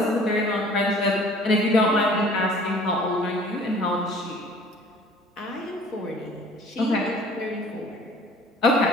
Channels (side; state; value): both; normal; correlation 0.51